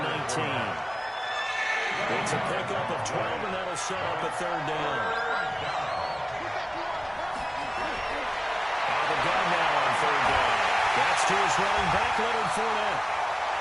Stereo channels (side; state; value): both; identical; correlation 1.00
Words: 19. It's a pickup of 12, and that'll set up a 3rd down. Out of the gun now on 3rd down. That's to his running back, Leonard Fournette.